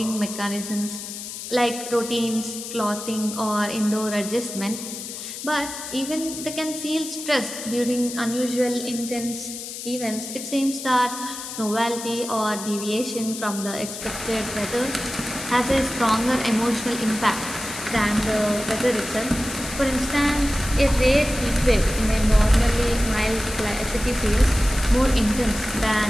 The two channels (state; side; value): noise; left; hiss, 9 dB below the sound